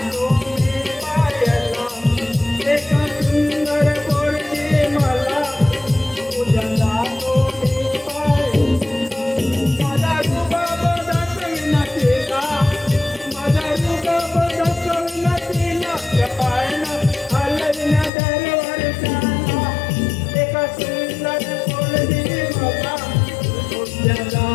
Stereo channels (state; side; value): drops out; right; at 18.1 s